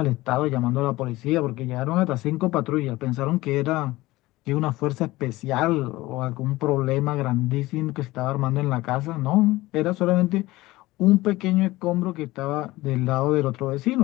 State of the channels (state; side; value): quieter; right; 18.8 dB